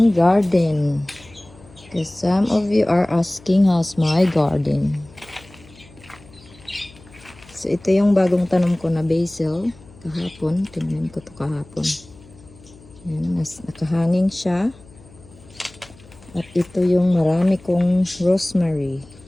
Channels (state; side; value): noise; left; hum, 24 dB below the sound